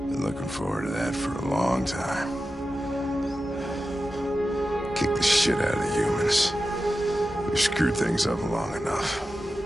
Been looking forward to that for a long time. Kick the shit out of the humans. We've screwed things up long enough.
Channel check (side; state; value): both; normal; correlation 0.92